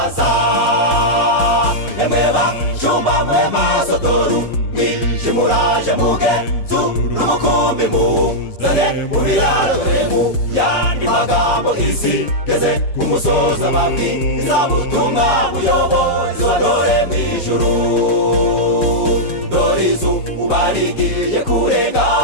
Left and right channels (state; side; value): late; right; 6.1 ms